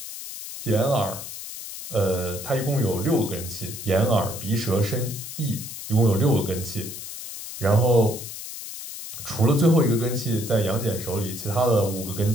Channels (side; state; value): left; noise; hiss, 10 dB below the sound